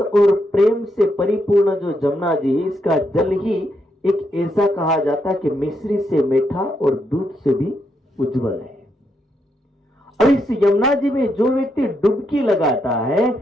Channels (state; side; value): normal; both; correlation 0.79